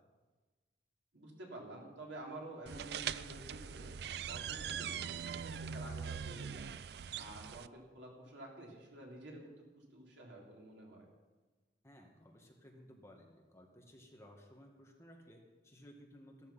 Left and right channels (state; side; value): quieter; left; 5.6 dB